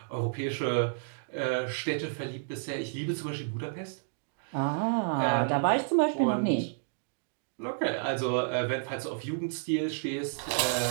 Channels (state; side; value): silent; left; digital silence